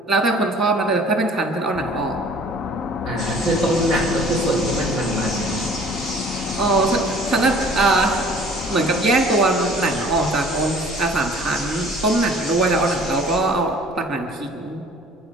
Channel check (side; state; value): both; normal; correlation 0.51